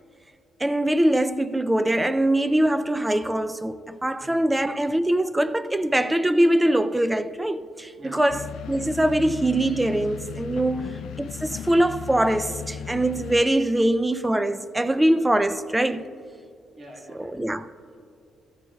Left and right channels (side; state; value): both; normal; correlation 0.95